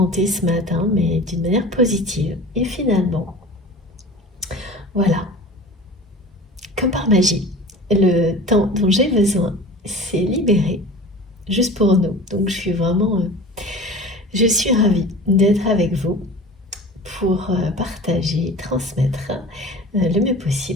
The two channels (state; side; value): normal; both; correlation 0.38